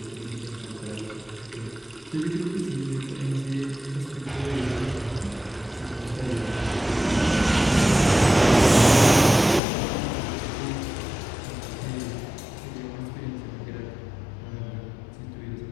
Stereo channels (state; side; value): drops out; right; at 9.6 s